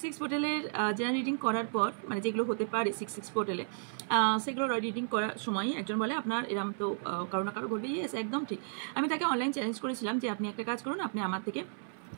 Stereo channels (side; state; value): left; silent; 56 dB below the other